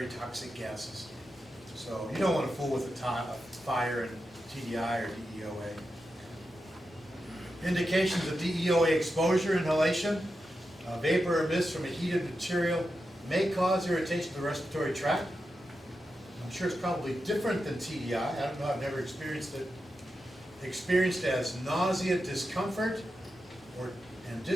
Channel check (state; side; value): normal; both; correlation 0.89